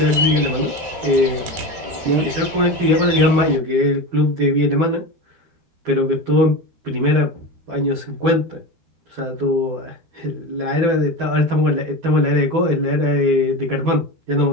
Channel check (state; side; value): late; left; 13 ms